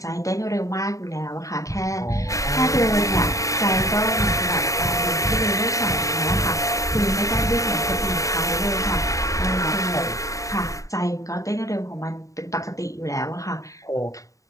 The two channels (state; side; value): late; right; 0.16 ms